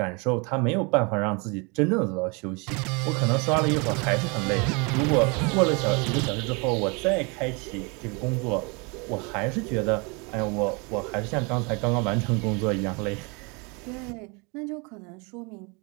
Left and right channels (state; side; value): quieter; left; 30.6 dB